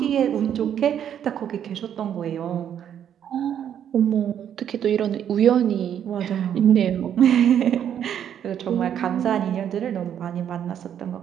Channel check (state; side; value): quieter; left; 9.4 dB